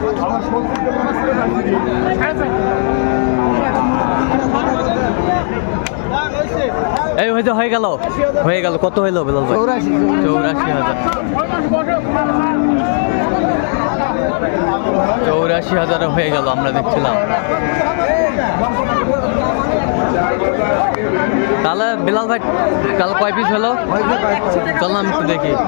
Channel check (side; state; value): right; silent; digital silence